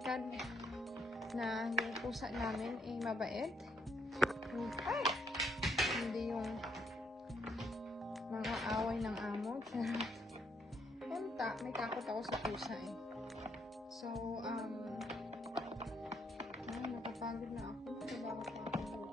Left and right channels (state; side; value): normal; both; correlation 0.73